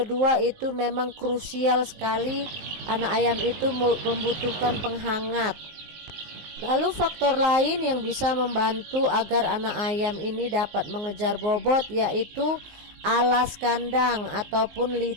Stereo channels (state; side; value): late; left; 19 ms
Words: itu memang krusial sekali, anak ayam itu membutuhkan penghangat. Lalu faktor lain yang bisa membantu agar anak ayam ini dapat mengejar bobot yaitu alas kandang ataupun